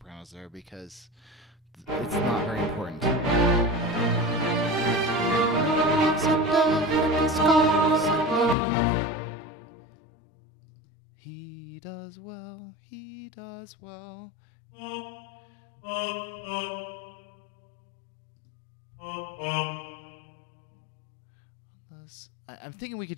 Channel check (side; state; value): right; drops out; at 8.6 s